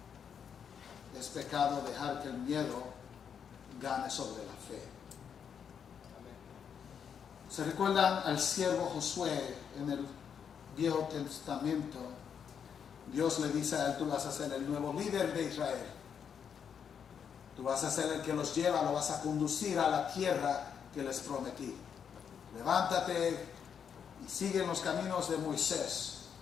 es pecado dejar que el miedo gane sobre la fe. ¿Se recuerdan al siervo Josué en el Viejo Testamento? Dios le dice a él: tú vas a ser el nuevo líder de Israel. Tú vas a ser el que los lleva, lo vas a conducir a la tierra que les prometí. Levántate y sigue en los caminos de Moisés.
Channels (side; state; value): right; quieter; 7.5 dB